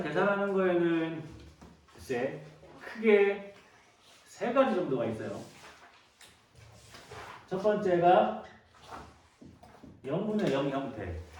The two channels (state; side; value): identical; both; correlation 1.00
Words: 계산하는 거에는 글쎄 크게 세 가지 정도가 있어요. 첫 번째가 0분의 0 형태.